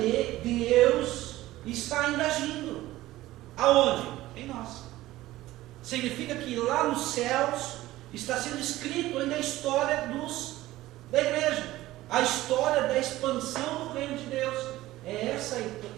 Deus, está ainda agindo. Aonde? Em nós. Significa que lá nos céus está sendo escrito ainda a história da igreja, a história da expansão do reino de Deus. É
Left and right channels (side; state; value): left; quieter; 16.5 dB